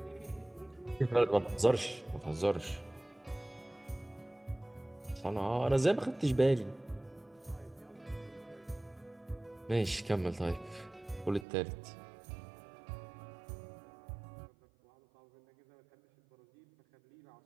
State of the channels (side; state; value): left; drops out; at 11.5 s